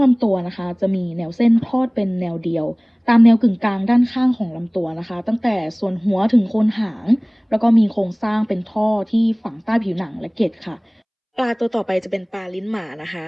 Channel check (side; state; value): both; identical; correlation 1.00